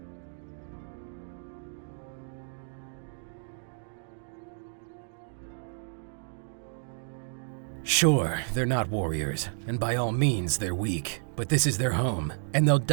Sure, they're not warriors, and by all means they're weak, but this is their home, and they'll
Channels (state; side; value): silent; left; digital silence